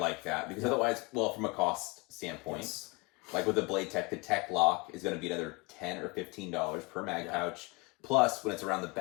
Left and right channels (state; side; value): quieter; right; 27.8 dB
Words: that because otherwise, well, from a cost standpoint, like with the Blade Tech, the Tech Lock is going to be another $10 or $15 per mag pouch. Plus, when it's around the